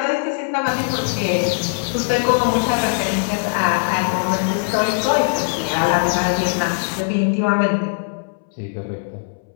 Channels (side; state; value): right; silent; 66 dB below the other